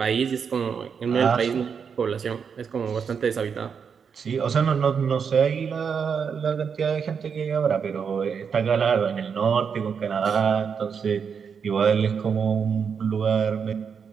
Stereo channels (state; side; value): quieter; left; 6.5 dB